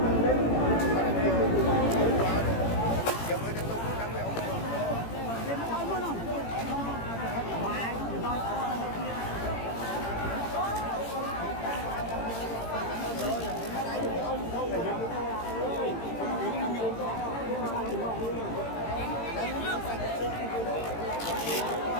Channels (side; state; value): right; late; 18 ms